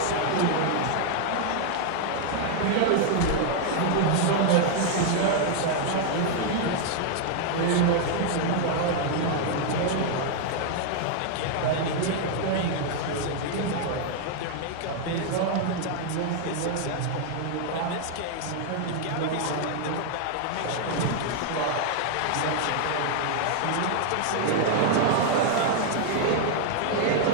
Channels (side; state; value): both; different; correlation 0.00